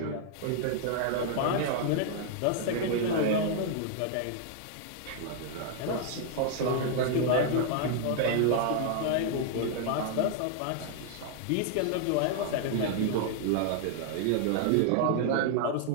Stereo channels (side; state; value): both; different; correlation 0.00